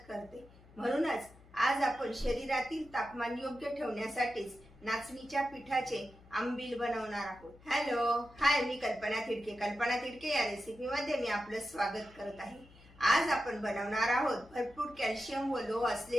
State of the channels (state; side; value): noise; left; hum, 24 dB below the sound